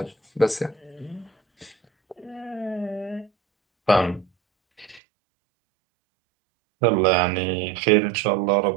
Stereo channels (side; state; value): left; drops out; at 5.0 s